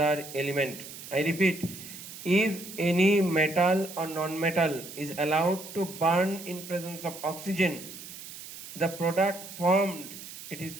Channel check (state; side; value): noise; right; hiss, 13 dB below the sound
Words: element. I repeat, if any metal or non-metal is allowed to burn in presence of oxygen, the product formed, it is